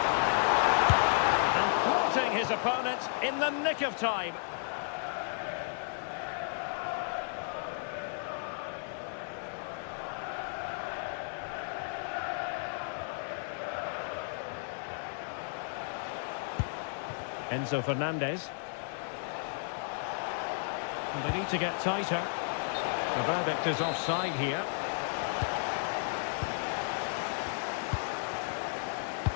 And thwarting his opponent in the nick of time. Enzo Fernandez. And they need to get tighter. The verdict is offside here.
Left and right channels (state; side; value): silent; right; digital silence